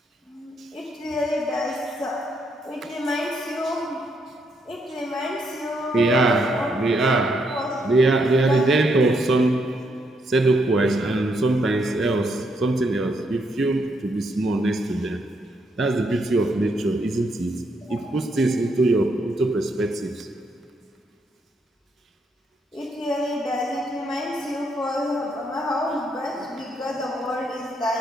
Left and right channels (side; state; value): both; normal; correlation 0.76